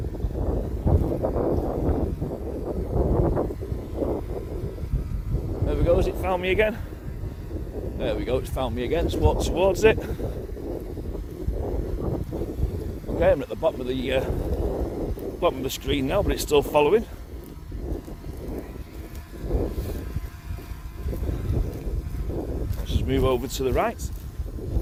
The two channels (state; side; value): identical; both; correlation 1.00